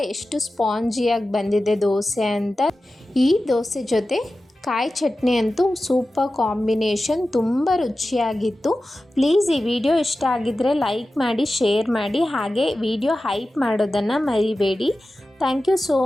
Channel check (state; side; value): normal; both; correlation 0.94